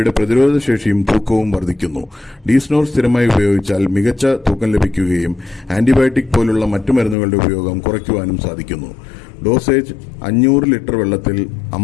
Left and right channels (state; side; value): drops out; right; at 7.2 s